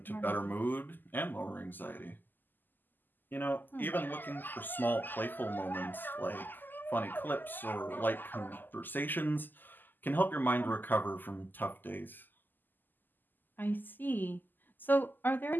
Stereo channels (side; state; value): right; late; 0.089 ms